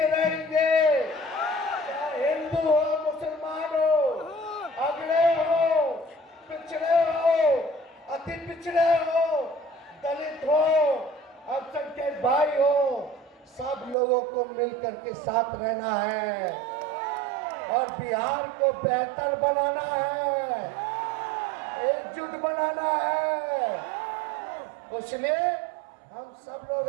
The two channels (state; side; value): drops out; left; at 14.0 s